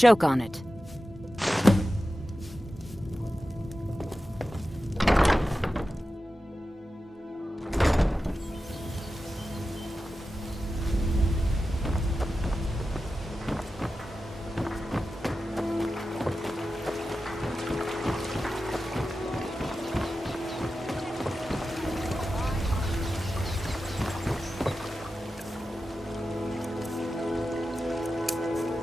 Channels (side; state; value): both; normal; correlation 0.93